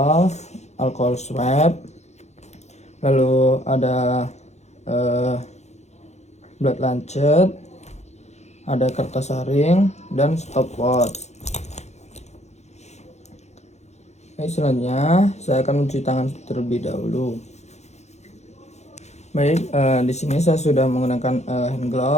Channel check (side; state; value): right; late; 0.32 ms